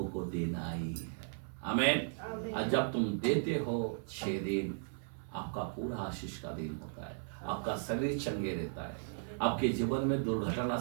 को देना ही है। आमेन। और जब तुम देते हो 6 दिन, आपका पूरा आशीष का दिन होता है। आपका शरीर चंगे रहता है, आपके जीवन में दुर्घटना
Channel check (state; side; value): silent; left; 54 dB below the other